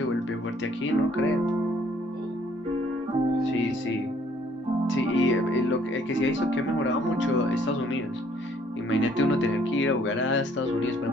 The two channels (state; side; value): normal; both; correlation 0.62